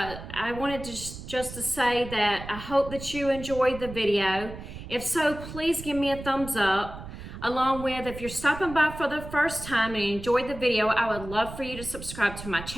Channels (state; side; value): noise; right; rumble, 12 dB below the sound